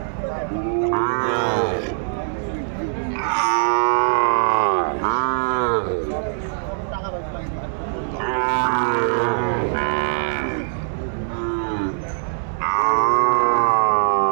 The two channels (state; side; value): silent; left; 65 dB below the other